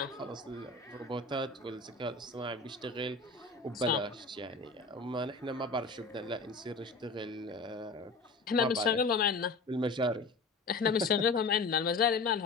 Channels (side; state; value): right; quieter; 3.7 dB